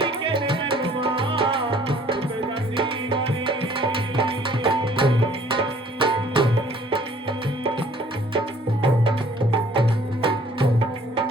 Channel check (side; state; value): both; normal; correlation 0.57